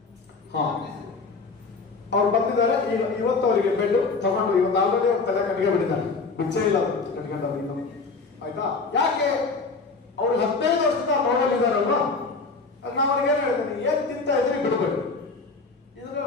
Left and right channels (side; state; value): right; quieter; 4.2 dB